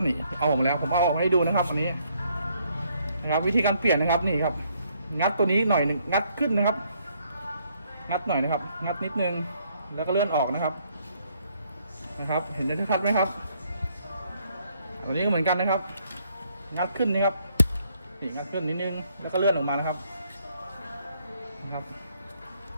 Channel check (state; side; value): inverted; both; correlation -0.69